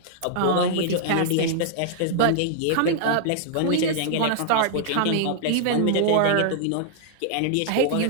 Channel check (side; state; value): both; different; correlation -0.01